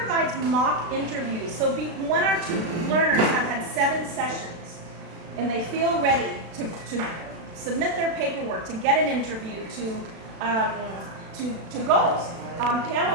mock interviews. So when our learners have had 7 sessions and they feel ready to submit their paperwork, to get an interview, to go,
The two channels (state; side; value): late; left; 36 ms